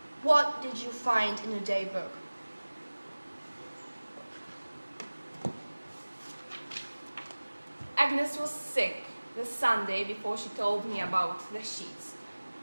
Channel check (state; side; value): inverted; both; correlation -1.00